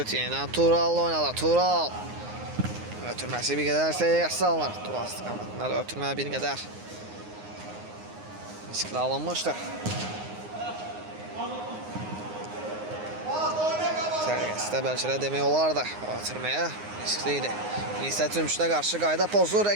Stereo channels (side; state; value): left; late; 9.6 ms